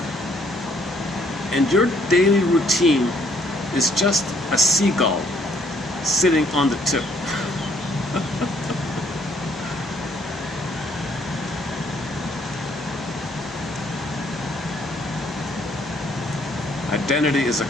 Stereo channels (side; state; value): both; normal; correlation 0.66